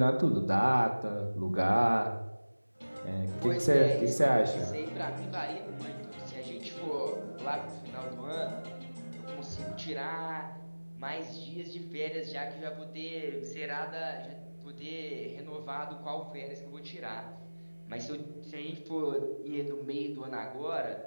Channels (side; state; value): both; inverted; correlation -1.00